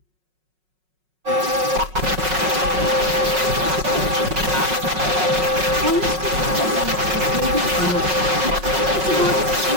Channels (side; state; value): left; late; 5.4 ms